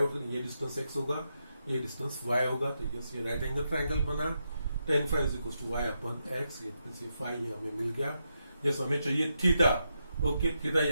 ये डिस्टेंस x होगा, ये डिस्टेंस y होगा, तो यस ये राइट एंगल ट्रायंगल बना। tan phi is equal to y upon x, ये फाई हमें मिल गया। यस हमें चाहिए थीटा। ओके थीटा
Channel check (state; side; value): inverted; both; correlation -0.84